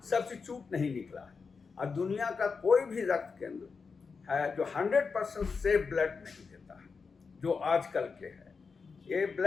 सब्स्टिट्यूट नहीं निकला है। और दुनिया का कोई भी रक्त केंद्र है जो 100% सेफ ब्लड नहीं देता है, जो आजकल के है। ये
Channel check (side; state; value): right; quieter; 5.1 dB